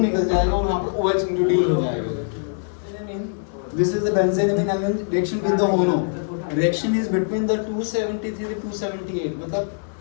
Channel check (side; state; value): right; silent; digital silence